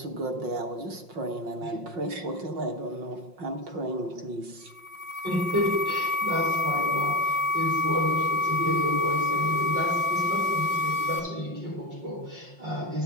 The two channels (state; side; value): late; left; 5.6 ms